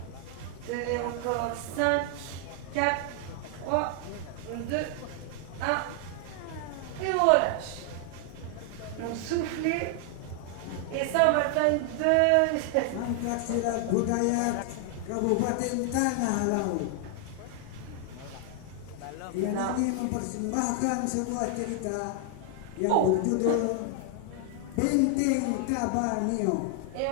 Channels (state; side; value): different; both; correlation 0.00